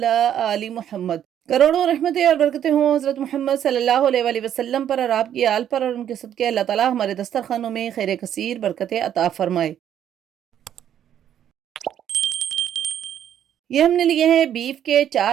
आलि मुहम्मद। करोड़ों रहमतें और बरकतें हों हज़रत मोहम्मद सल्लल्लाहु अलैहि वसल्लम पर और आपकी आल पर, और उनके सदक़े अल्लाह ताला हमारे दस्तरखानों में खैर कसीर बरकतें अता फरमाए। ये हमने लिए हैं बीफ के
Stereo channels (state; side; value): quieter; left; 10.1 dB